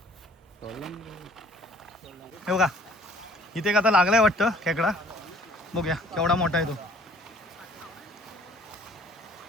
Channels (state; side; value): normal; both; correlation 0.57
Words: हे बघा इथे एक आता लागलाय वाटतं खेकडा. बघूया केवढा मोठा आहे तो.